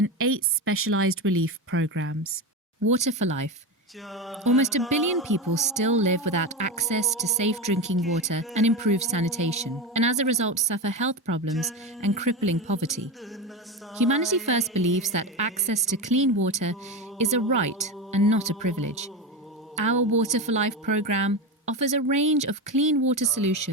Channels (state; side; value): normal; both; correlation 0.18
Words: 8 specialised relief programmes. Water for Life. Almost 1 billion people still live without access to safe drinking water and improved sanitation, and as a result suffer health problems and crippling poverty. Humanity First believes that access to clean water is a right and not a privilege. Our Water for Life programme offers a range of clean water